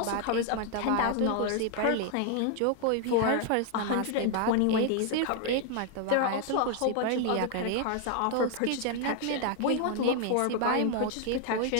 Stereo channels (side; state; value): both; different; correlation 0.00